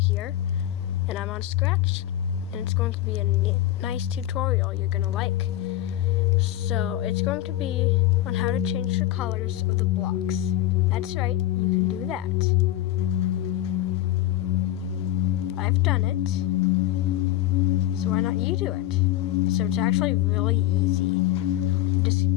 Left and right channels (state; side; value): quieter; right; 13.6 dB